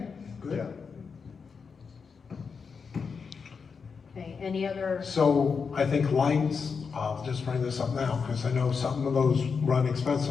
good. Yeah. Okay, any other, So I think lights, I'll just bring this up now, because I know some of those run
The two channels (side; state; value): right; quieter; 5.6 dB